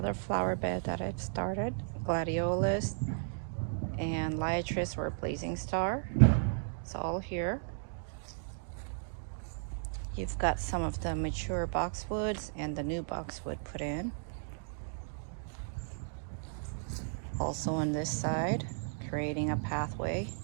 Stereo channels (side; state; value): left; silent; digital silence